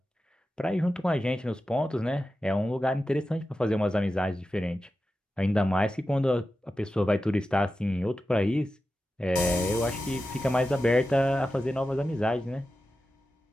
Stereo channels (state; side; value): normal; both; correlation 0.92